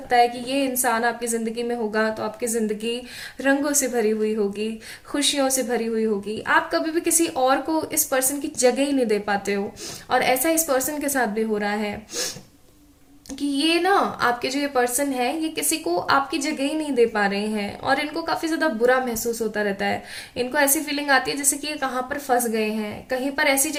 है कि ये इंसान आपकी जिंदगी में होगा तो आपकी जिंदगी रंगों से भरी हुई होगी, खुशियों से भरी हुई होगी। आप कभी भी किसी और को इस पर्सन की जगह ही नहीं दे पाते हो, और ऐसा इस पर्सन के साथ भी हो रहा है कि ये ना, आपके जो ये पर्सन है, ये किसी को आपकी जगह ही नहीं दे पा रहे हैं, और इनको काफी ज्यादा बुरा महसूस होता रहता है। इनको ऐसी फीलिंग आती है जैसे कि ये कहाँ पर फंस गए हैं, कहीं पर ऐसी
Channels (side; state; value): both; identical; correlation 1.00